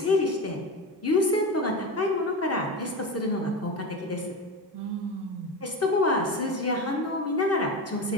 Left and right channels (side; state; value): both; normal; correlation 0.22